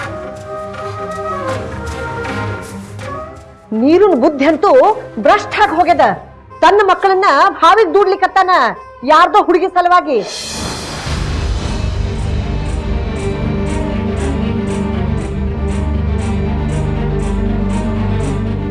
ನೀರಿನ ಬುದ್ಧಿ ಅಂತೂ ಭ್ರಷ್ಟ ಆಗಿ ಹೋಗ್ಯದ. ತನ್ನ ಮಕ್ಕಳನ್ನ ಭಾವಿಗೆ ದೂಡ್ಲಿಕ್ಕತ್ತಾನ ಯಾರ್ದೋ ಹುಡುಗಿ ಸಲುವಾಗಿ.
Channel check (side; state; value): both; identical; correlation 1.00